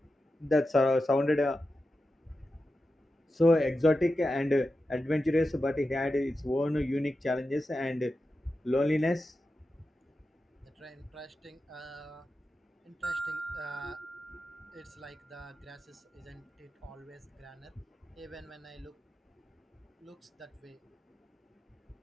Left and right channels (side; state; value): both; normal; correlation 0.91